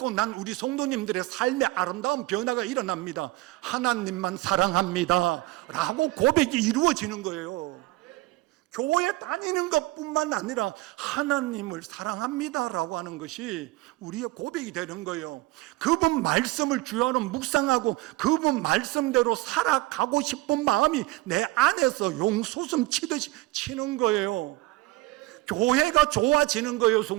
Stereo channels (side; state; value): left; quieter; 19.6 dB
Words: 난 우리 성도님들의 삶의 아름다운 변화가 일어납니다. 하나님만 사랑합니다 라고 고백이 이루어지는 거예요. 교회 다니는 것뿐만 아니라 하나님을 사랑합니다 라고 하는 것이 우리의 고백이 되는 거예요. 그분 말씀을 주야로 묵상하고 그분 말씀대로 살아가고 싶은 마음이 내 안에서 용솟음 치듯이 치는 거예요. 교회가 좋아지는 거예요.